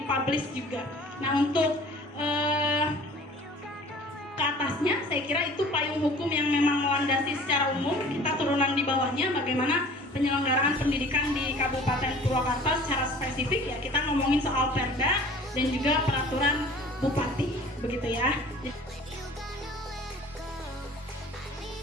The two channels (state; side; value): normal; both; correlation 0.47